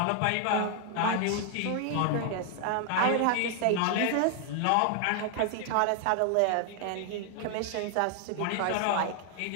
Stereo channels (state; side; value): different; both; correlation 0.00